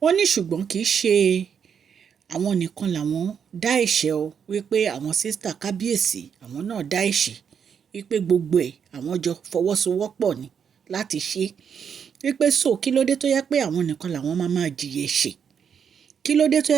Wọ́n ní ṣùgbọ́n kì í ṣe àwọn nìkan làwọn dá ẹ̀ṣẹ̀ o, wípé àwọn sísítà kábíyèsí àwọn náà dá ẹ̀ṣẹ̀, wípé gbogbo ẹ̀ àwọn jọ fọwọ́sowọ́pọ̀ ni láti ṣe, wípé so kí ló dé tó yẹ pé àwọn nìkan làwọn máa jìyà ẹ̀ṣẹ̀, kí ló dé tó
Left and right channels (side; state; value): left; quieter; 7.3 dB